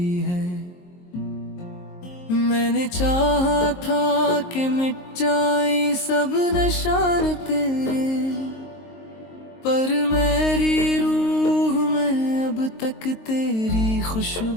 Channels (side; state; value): right; late; 23 ms